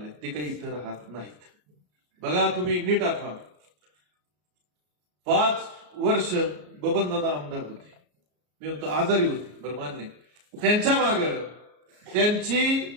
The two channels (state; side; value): late; left; 34 ms